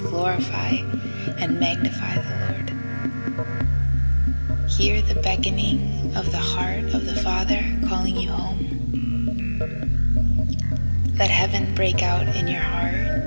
and magnify the Lord. Hear the beckoning of the heart of the Father calling you home. Let heaven break out in your heart,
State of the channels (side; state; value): both; inverted; correlation -1.00